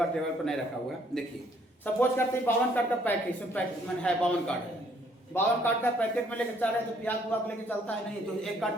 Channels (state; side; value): normal; both; correlation 0.65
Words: टेबल पर नहीं रखा हुआ है। देखिए सपोज करते हैं 52 कार्ड का पैकेट, इसमें पैकेट में है 52 कार्ड है, 52 कार्ड का पैकेट में लेके चल रहे तो प्याज बुआ लेके चलता है नहीं, तो एक